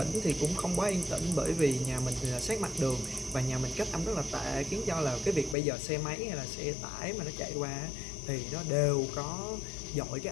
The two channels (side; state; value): right; drops out; at 5.6 s